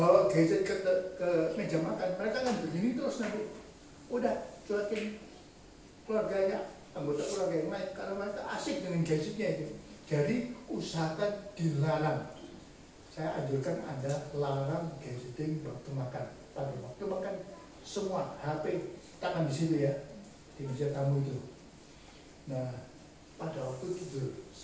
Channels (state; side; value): identical; both; correlation 1.00